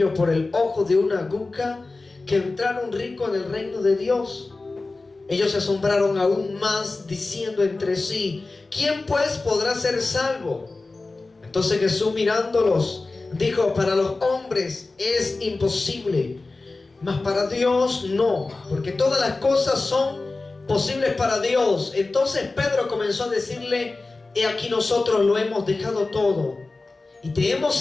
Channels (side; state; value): right; quieter; 3.4 dB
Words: por el ojo de una aguja que entrar un rico en el reino de Dios. Ellos se asombraron aún más, diciendo entre sí: ¿quién pues podrá ser salvo? Entonces Jesús, mirándolos, dijo: para los hombres es imposible, mas para Dios no, porque todas las cosas son posibles para Dios. Entonces Pedro comenzó a decirle: he aquí nosotros lo hemos dejado todo y te hemos